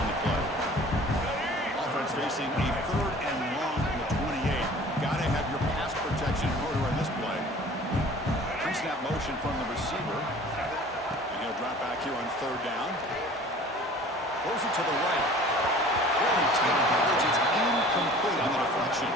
the play. Offense facing a 3rd and long from the 28. Gotta have your pass protection in order on this play. Pre-snap motion from the receiver. And he'll drop back here on 3rd down. Throws it to the right. Really tight coverage. It's incomplete on the deflection.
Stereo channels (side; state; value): both; normal; correlation 0.46